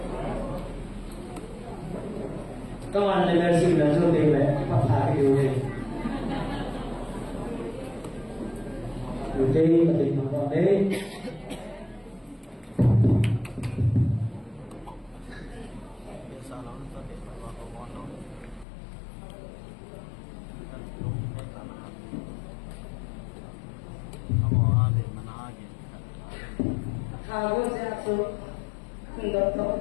Come on, let's see the shooting of happy day. Today, the Monday. Kalau saya tu hendak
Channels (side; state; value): right; drops out; at 18.7 s